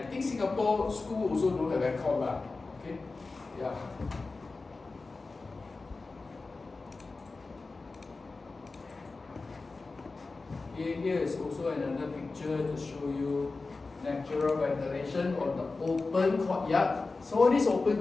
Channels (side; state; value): right; quieter; 3.8 dB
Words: think Singapore school also don't have aircon lah. Okay, yeah. Here is also another picture to show you natural ventilation on the open courtyard. So this open